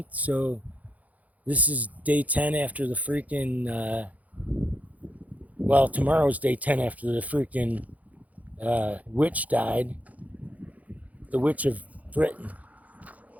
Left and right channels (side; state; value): left; late; 0.074 ms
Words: so this is day 10 after the freaking, tomorrow's day 10 after the freaking witch died, the Witch of Britain.